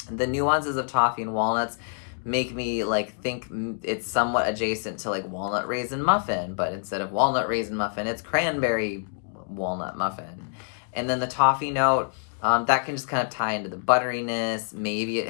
The nuances of toffee and walnuts make me like think it's somewhat adjacent to like walnut raisin muffin, but instead of walnut raisin muffin, it's cranberry walnut muffin. And then the toffee note, that can just kind of tie into the butteriness. Maybe it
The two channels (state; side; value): silent; right; digital silence